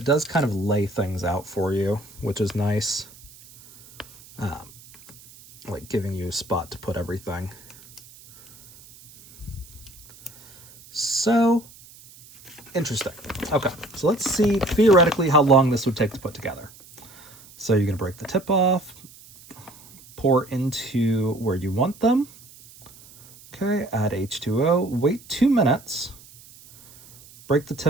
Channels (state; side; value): noise; right; hiss, 22 dB below the sound